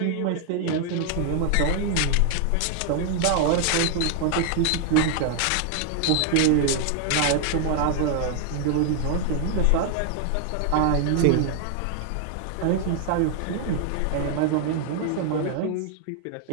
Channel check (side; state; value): both; different; correlation 0.00